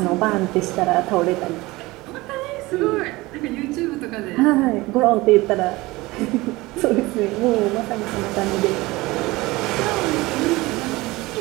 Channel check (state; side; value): quieter; left; 20.8 dB